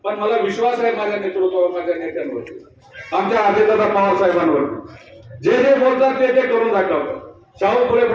पण मला विश्वास आहे माझ्या नेतृत्वावर, माझ्या नेत्यांवरती, आमच्या अजितदादा पवार साहेबांवरती. जे जे बोलतात ते करून दाखवतात. शाहू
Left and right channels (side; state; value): both; identical; correlation 1.00